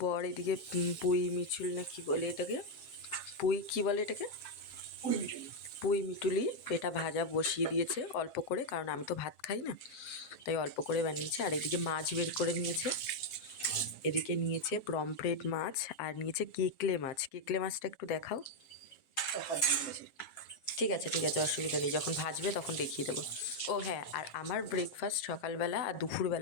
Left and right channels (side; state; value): right; late; 7.5 ms